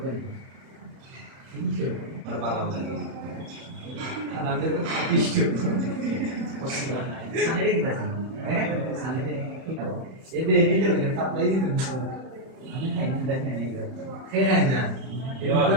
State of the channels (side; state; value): left; late; 31 ms